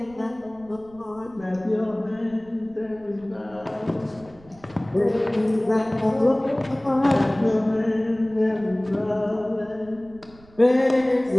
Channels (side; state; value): right; noise; rumble, 25 dB below the sound